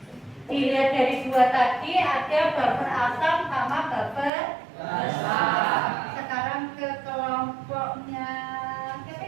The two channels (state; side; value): drops out; left; at 4.3 s